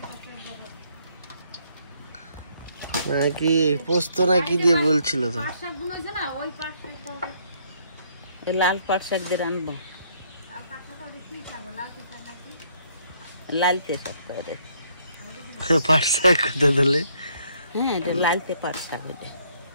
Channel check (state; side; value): inverted; both; correlation -0.68